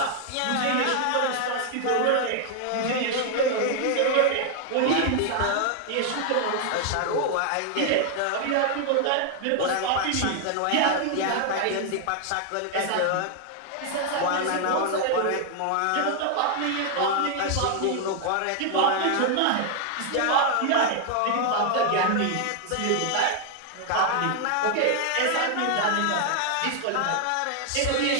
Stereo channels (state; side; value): different; both; correlation 0.00